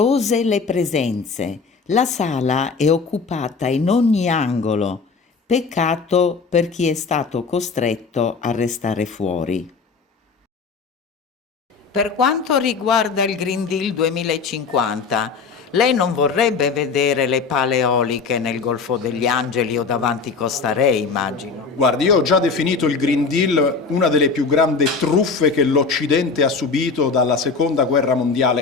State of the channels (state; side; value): quieter; right; 4.8 dB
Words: le presenze. La sala è occupata in ogni angolo. Peccato per chi è stato costretto a restare fuori. Per quanto riguarda il Green Deal 2050, lei non vorrebbe vedere le pale eoliche nel Golfo degli Angeli o davanti Costa Re, immagino. Guardi, io ho già definito il Green Deal una delle più grandi truffe che l'Occidente ha subito dalla Seconda Guerra